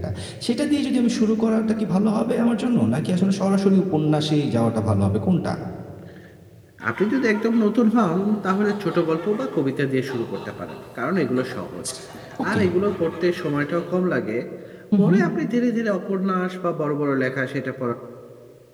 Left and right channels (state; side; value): identical; both; correlation 1.00